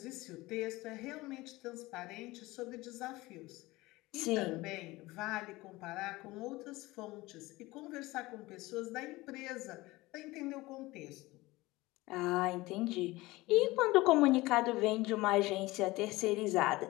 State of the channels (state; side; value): quieter; right; 20.2 dB